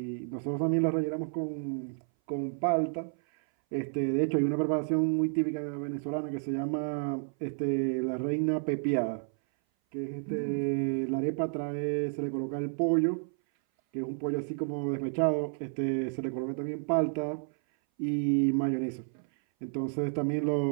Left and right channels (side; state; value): left; silent; 57 dB below the other